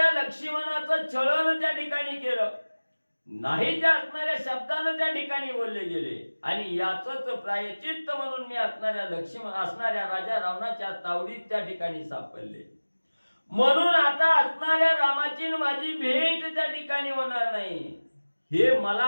लक्ष्मणाचं छळण त्या ठिकाणी केलं नाही, त्या असणाऱ्या शब्दानं त्या ठिकाणी बोलले गेले. आणि याचंच प्रायचित्त म्हणून मी असणाऱ्या राजा रावणाच्या तावडीत त्या ठिकाणी सापडले. म्हणून आता असणाऱ्या रामाची माझी भेट त्या ठिकाणी होणार नाही, हे मला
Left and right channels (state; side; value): inverted; both; correlation -1.00